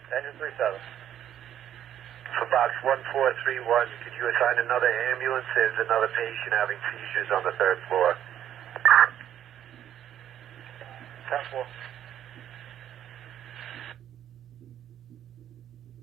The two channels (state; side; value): quieter; left; 10.7 dB